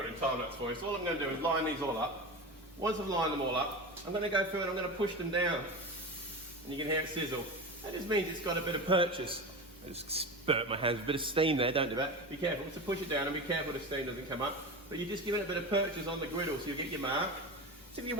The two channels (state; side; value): normal; both; correlation 0.25